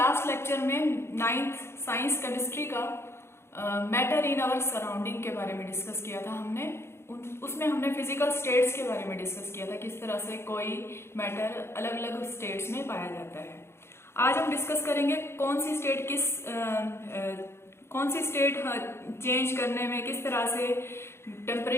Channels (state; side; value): late; right; 0.12 ms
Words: लेक्चर में 9th साइंस केमिस्ट्री का मैटर इन आवर सराउंडिंग के बारे में डिस्कस किया था। उसमें हमने फिजिकल स्टेट्स के बारे में डिस्कस किया था, किस तरह से कोई मैटर अलग अलग स्टेट्स में पाया जाता है। आज हम डिस्कस करेंगे कौन सी स्टेट चेंज करने में किस तरह से